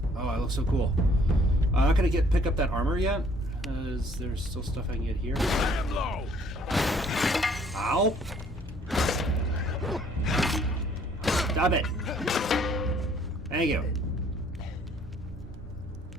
Oh, I look so cool. I'm not gonna pick up that armor yet, because there's still stuff I can get here. I am low! Ow! Stop it! Thank you.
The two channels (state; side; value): normal; both; correlation 0.61